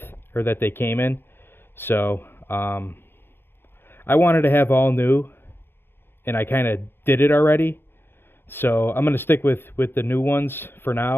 or that they came in. So I wanted to have all new, and I kind of did it already. So I'm going to stick with the new ones for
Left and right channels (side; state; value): right; late; 0.10 ms